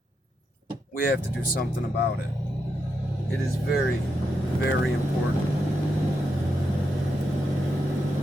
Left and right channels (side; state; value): both; normal; correlation 0.84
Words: We have to do something about it. It is very, very important.